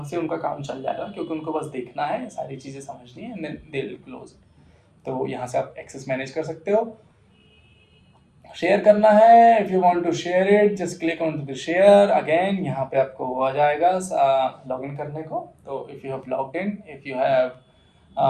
से उनका काम चल जाएगा, क्योंकि उनको बस देखना है, सारी चीज़ें समझनी है, and then they will close. तो यहाँ से आप एक्सेस मैनेज कर सकते हो। शेयर करना है, if you want to share it, just click on to the share. Again यहाँ पे आपको आ जाएगा लॉग इन करने को। तो if you have logged in, if you have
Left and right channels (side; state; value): both; identical; correlation 1.00